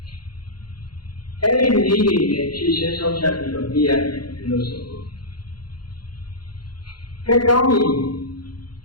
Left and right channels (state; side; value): late; right; 0.71 ms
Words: အဲ့ဒီနည်းတွေနဲ့ဖြည့်ရှင်းဆုံးဖြတ်ပြီးတော့ပြရတယ်လို့ဆိုလို့ကဲကောင်းပြီ